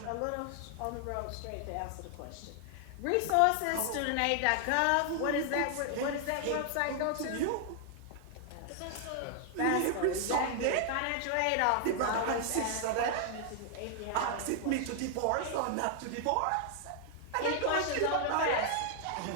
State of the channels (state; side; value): different; both; correlation 0.00